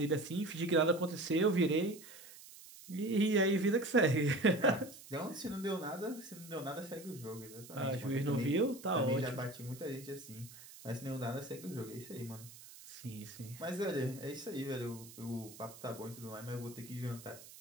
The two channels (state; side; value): noise; right; hiss, 17 dB below the sound